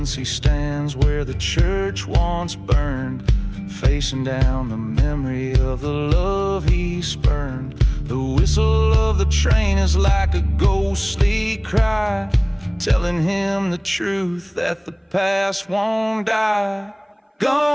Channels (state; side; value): identical; both; correlation 1.00